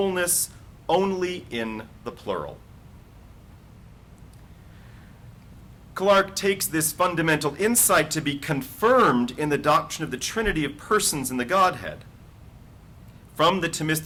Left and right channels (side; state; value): both; identical; correlation 1.00